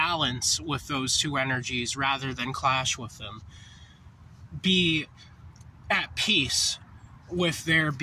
with those two energies rather than clash with them. Be at peace with there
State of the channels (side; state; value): both; identical; correlation 1.00